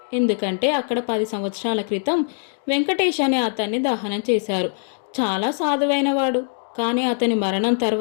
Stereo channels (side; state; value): right; silent; 64 dB below the other